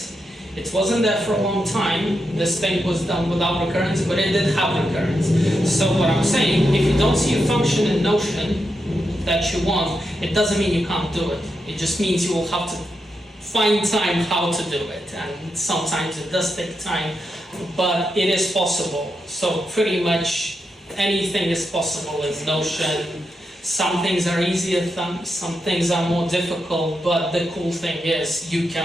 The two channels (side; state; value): both; normal; correlation 0.85